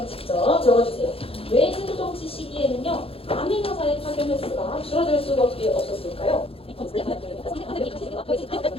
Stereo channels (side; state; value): right; late; 0.27 ms